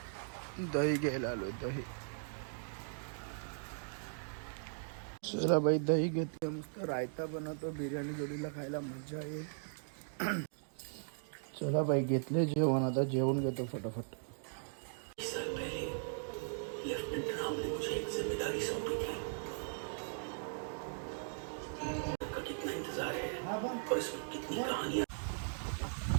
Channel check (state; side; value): silent; left; digital silence